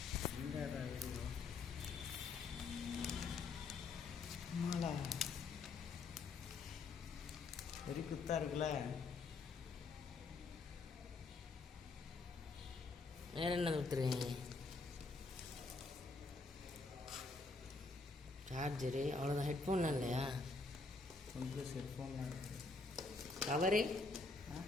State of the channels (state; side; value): quieter; right; 3.8 dB